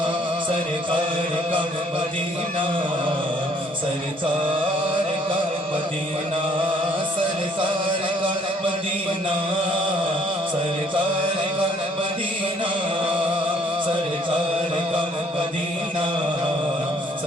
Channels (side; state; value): both; normal; correlation 0.63